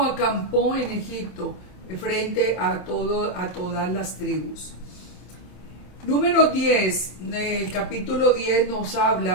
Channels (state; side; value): late; right; 26 ms